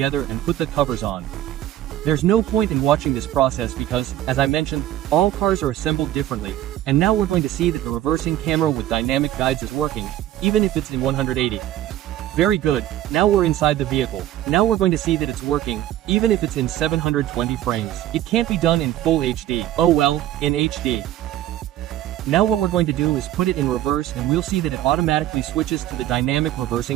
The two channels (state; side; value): quieter; left; 13.1 dB